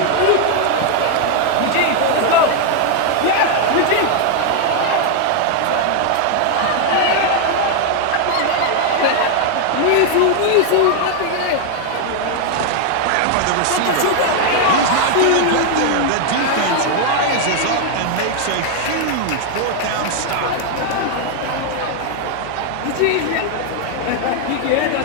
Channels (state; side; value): different; both; correlation 0.00